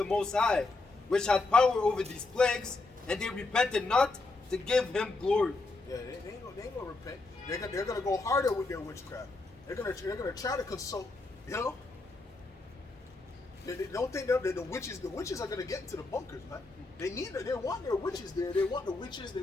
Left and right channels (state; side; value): quieter; right; 3.4 dB